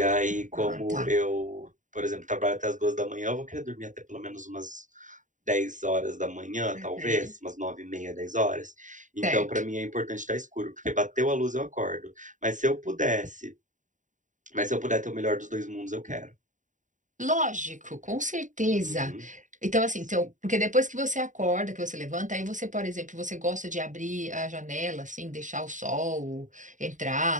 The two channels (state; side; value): late; left; 0.37 ms